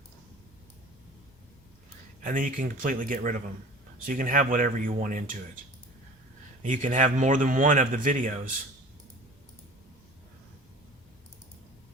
And then you can completely get rid of them. So you can have whatever you want into it. You can have more than one of the videos.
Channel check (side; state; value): both; normal; correlation 0.42